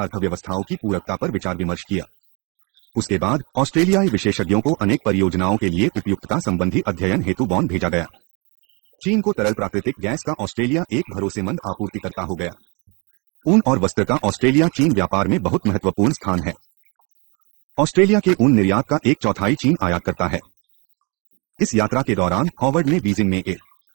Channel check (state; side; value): quieter; left; 30.7 dB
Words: की पूरकता पर विचार विमर्श किया। उसके बाद ऑस्ट्रेलियाई विशेषज्ञों को अनेक परियोजनाओं के लिए उपयुक्तता संबंधी अध्ययन हेतु बॉन भेजा गया। चीन को तरल प्राकृतिक गैस का ऑस्ट्रेलिया एक भरोसेमंद आपूर्तिकर्ता हो गया। ऊन और वस्त्र का ऑस्ट्रेलिया चीन व्यापार में बहुत महत्वपूर्ण स्थान है। ऑस्ट्रेलिया के ऊन निर्यात का 1/4 चीन आयात करता है। इस यात्रा के दौरान हॉवर्ड ने बीजिंग में